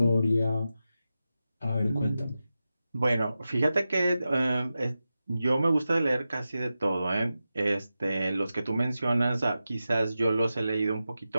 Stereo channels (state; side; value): inverted; both; correlation -0.92